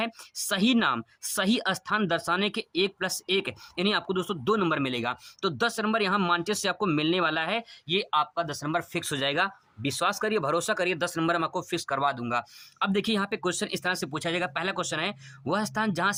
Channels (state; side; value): identical; both; correlation 1.00